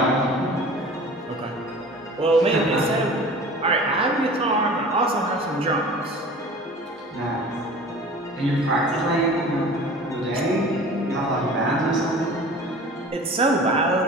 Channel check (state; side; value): normal; both; correlation 0.41